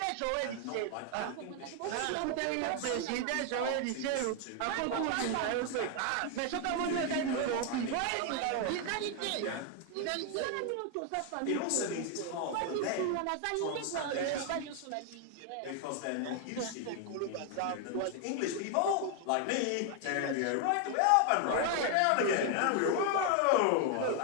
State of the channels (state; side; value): different; both; correlation 0.00